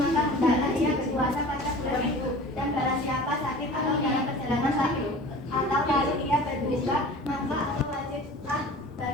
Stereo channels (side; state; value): both; normal; correlation 0.41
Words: hendaklah ia berpuasa pada bulan itu. Dan barang siapa sakit atau dalam perjalanan sakit atau lalu ia berbuka, maka atau wajiblah